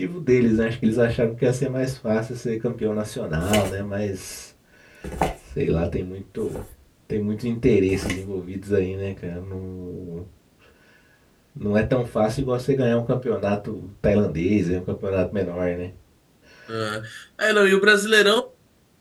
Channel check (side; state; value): both; identical; correlation 1.00